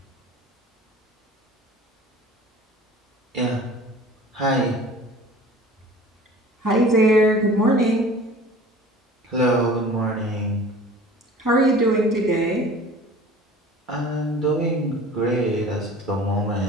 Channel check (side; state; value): both; normal; correlation 0.44